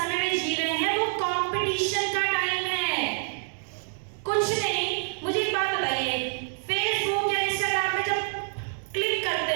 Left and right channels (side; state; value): left; silent; digital silence